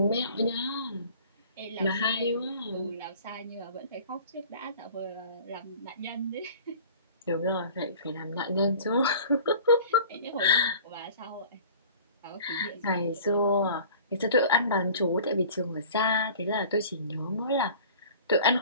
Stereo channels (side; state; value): both; inverted; correlation -0.46